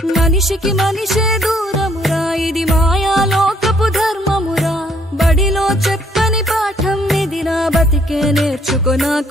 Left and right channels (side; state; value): both; normal; correlation 0.66